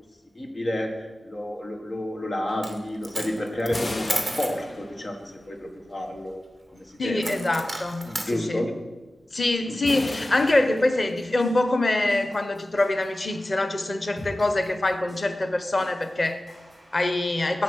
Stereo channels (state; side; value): normal; both; correlation 0.95